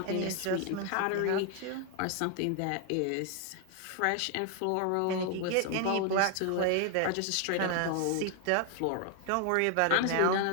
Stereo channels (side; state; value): both; different; correlation 0.00